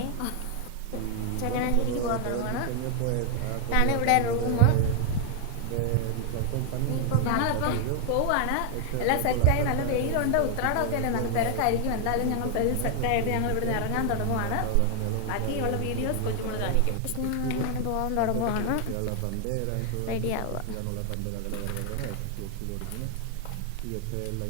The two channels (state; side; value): different; both; correlation 0.00